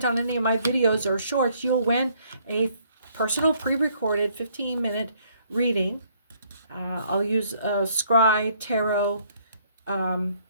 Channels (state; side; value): inverted; both; correlation -0.65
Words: on any of my videos or shorts, you'll win a personal pre-recorded 15-minute reading. I'll use scry, tarot,